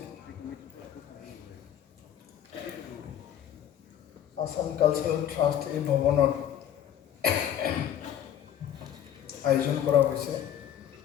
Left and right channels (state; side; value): quieter; right; 10.3 dB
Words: আসাম কালচাৰেল ট্ৰাষ্ট এই ভৱনত আয়োজন কৰা হৈছে।